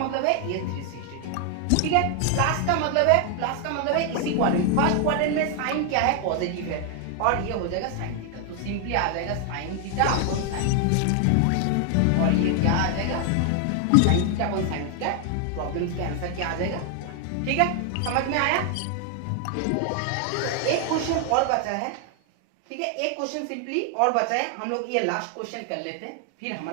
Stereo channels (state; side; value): different; both; correlation 0.00